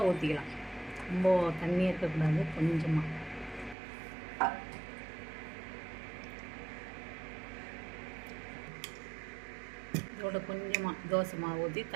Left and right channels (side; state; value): left; drops out; at 3.8 s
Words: ஊற்றிக்கலாம். ரொம்ப தண்ணி இருக்கக்கூடாது, கொஞ்சமாக. இதோட கொஞ்சமாக தோசை மாவு ஊற்றி